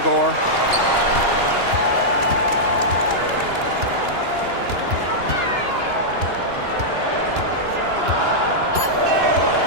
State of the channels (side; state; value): left; late; 2.9 ms